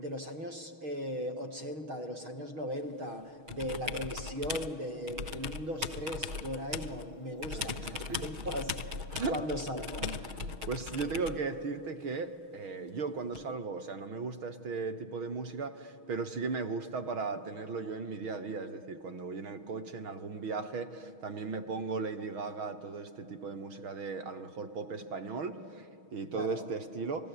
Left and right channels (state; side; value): late; left; 6.3 ms